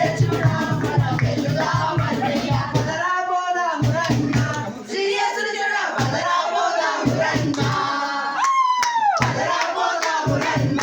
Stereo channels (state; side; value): identical; both; correlation 1.00